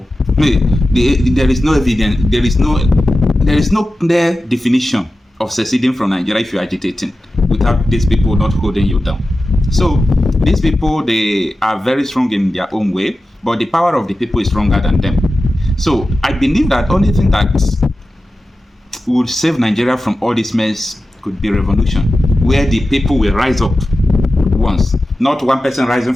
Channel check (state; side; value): normal; both; correlation 0.93